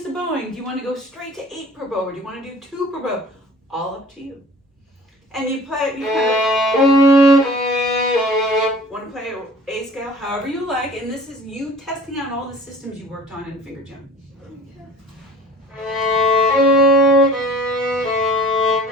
the bowing. Do you want to go straight to 8 per bow, or do you want to do 2 per bow? All up to you. And you play. You want to play A scale however you like. And this is you testing out all the systems you worked on in finger gym.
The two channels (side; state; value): both; normal; correlation 0.45